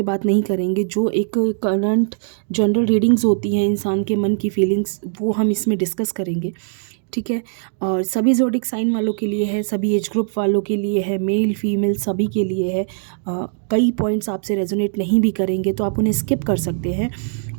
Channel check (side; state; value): left; silent; digital silence